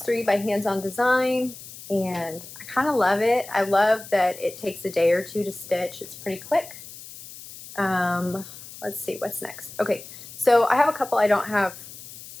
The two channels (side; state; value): left; noise; hiss, 15 dB below the sound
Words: 3 by Hands On Design, and I kind of love it. I love that it takes a day or two to stitch. It's pretty quick. Let's see what's next. Okay, so I have a couple I don't have